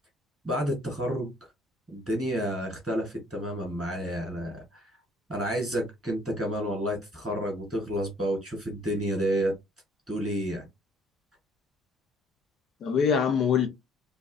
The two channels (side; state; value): both; normal; correlation 0.60